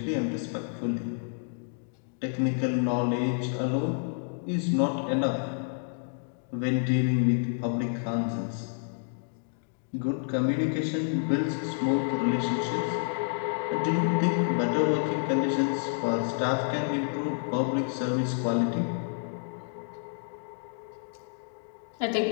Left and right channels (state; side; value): silent; right; digital silence